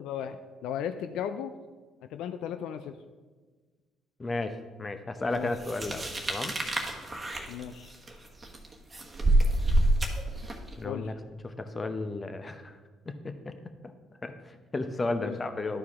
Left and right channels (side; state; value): both; normal; correlation 0.79